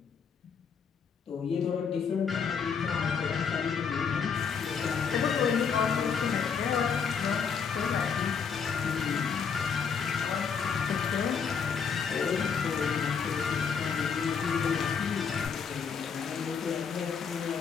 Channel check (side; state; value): right; quieter; 6.4 dB